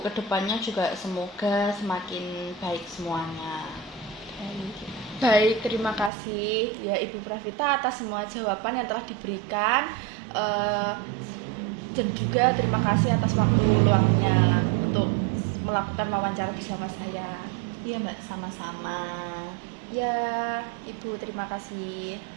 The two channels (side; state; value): left; drops out; at 6.1 s